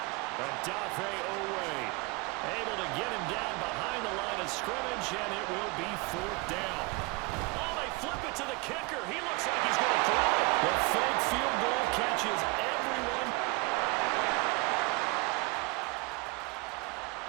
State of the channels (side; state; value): left; quieter; 26.3 dB